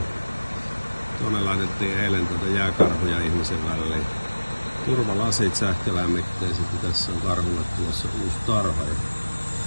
Tuonne laitettiin eilen jääkarhuja ihmisen väliin. Turvalasit sähkölämmitteiset ja tässä on karhulle tulossa uusi tarha.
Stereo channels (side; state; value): both; inverted; correlation -1.00